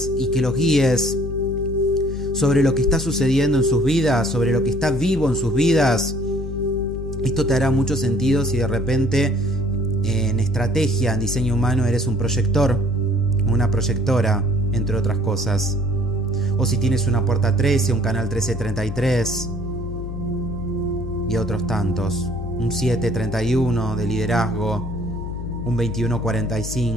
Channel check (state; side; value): noise; left; hum, 7 dB below the sound